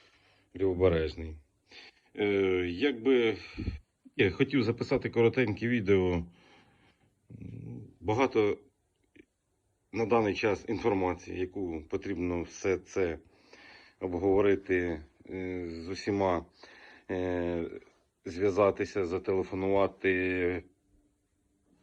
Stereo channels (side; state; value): both; identical; correlation 1.00